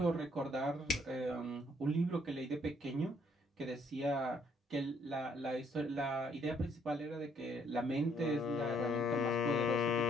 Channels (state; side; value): normal; both; correlation 0.68